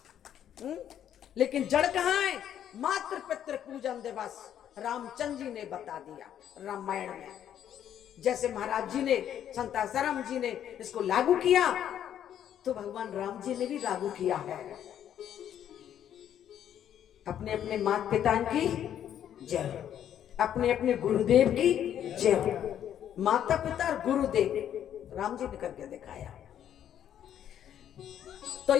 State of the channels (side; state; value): right; quieter; 10.1 dB